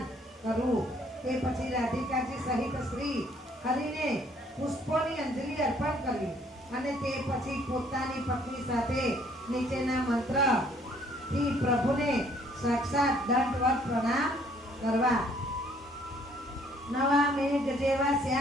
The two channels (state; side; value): normal; both; correlation 0.62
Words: કરવું. તે પછી રાધિકાજી સહિત શ્રી હરિને પુષ્પોની અંજલિ અર્પણ કરવી અને તે પછી પોતાની પત્ની સાથે નીચેના મંત્રથી પ્રભુને સાક્ષાત દંડવત પ્રણામ કરવા. નવા મેઘ જેવા